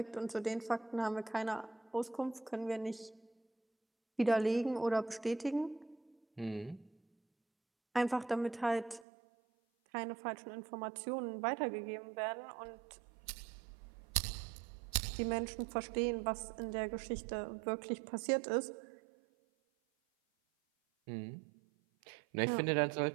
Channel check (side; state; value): left; drops out; at 9.1 s